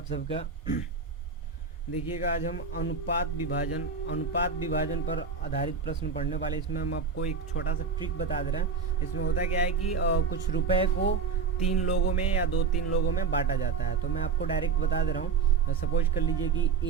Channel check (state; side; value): quieter; left; 5.5 dB